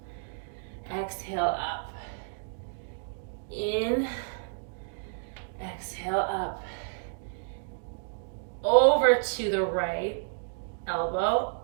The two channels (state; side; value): silent; left; digital silence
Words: exhale up, in, exhale up, over to the right elbow,